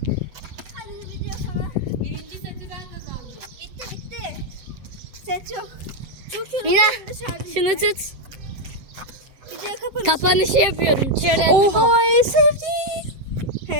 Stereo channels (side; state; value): left; late; 8.0 ms